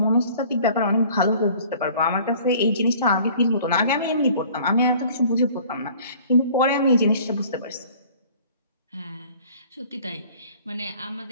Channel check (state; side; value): inverted; both; correlation -0.51